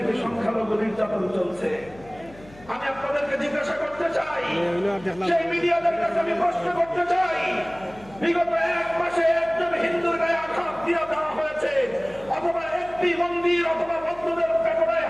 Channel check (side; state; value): left; noise; hum, 22 dB below the sound